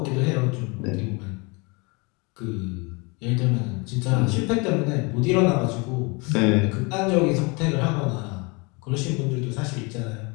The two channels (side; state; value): right; quieter; 29.0 dB